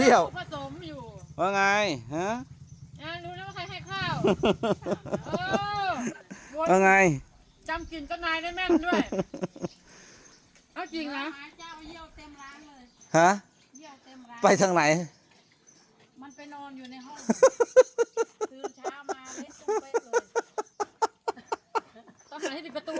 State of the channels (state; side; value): identical; both; correlation 1.00